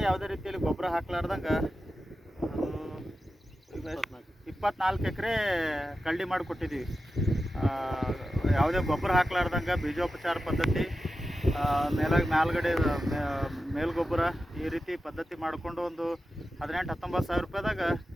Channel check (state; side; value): normal; both; correlation 0.92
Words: ಯಾವುದೇ ರೀತಿಯಲ್ಲಿ ಗೊಬ್ಬರ ಹಾಕ್ಲಾರ್ದಂಗೆ ಅದು 24 ಎಕರೆ ಕಳ್ಳಿ ಮಾಡಿಕೊಟ್ಟಿದ್ದೀವಿ. ಯಾವುದೇ ಗೊಬ್ಬರ ಹಾಕ್ಲಾರ್ದಂಗೆ ಬೀಜೋಪಚಾರ ಪದ್ಧತಿ, ಮೇಲ್ಗಡೆ ಮೇಲ್ಗೊಬ್ಬರ ಈ ರೀತಿ ಪದ್ಧತಿ ಮಾಡಿಕೊಂಡು ಒಂದು 18-19 ಸಾವಿರ ರೂಪಾಯಿದಾಗ